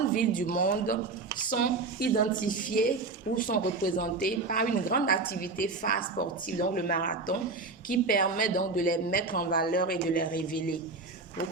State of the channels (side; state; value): left; quieter; 3.8 dB